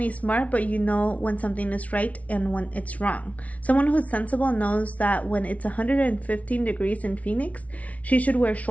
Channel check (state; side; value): late; right; 0.067 ms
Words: smart, but you know when something is right and when it's wrong. Someone who's sensible knows that when it's 115 degrees in Phoenix, she should wear